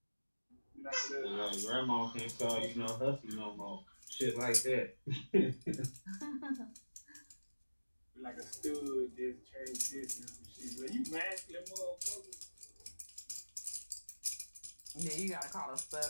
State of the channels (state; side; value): inverted; both; correlation -1.00